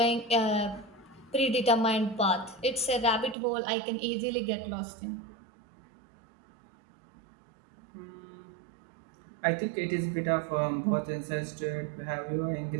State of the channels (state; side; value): drops out; left; at 3.4 s